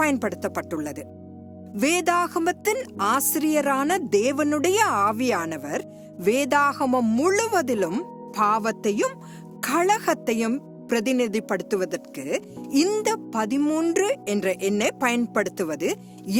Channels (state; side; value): identical; both; correlation 1.00